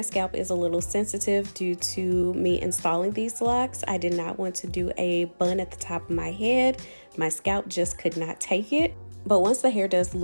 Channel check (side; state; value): both; inverted; correlation -1.00